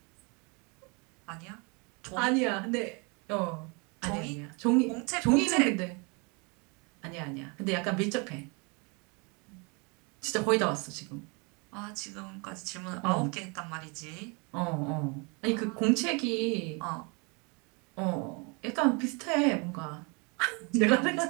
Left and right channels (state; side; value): quieter; left; 31.7 dB